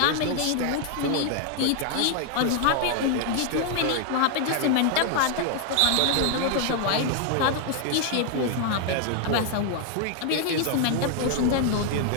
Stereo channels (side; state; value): both; different; correlation 0.00